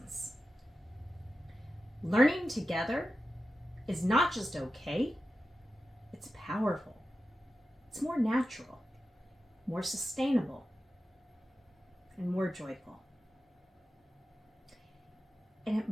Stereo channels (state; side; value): normal; both; correlation 0.92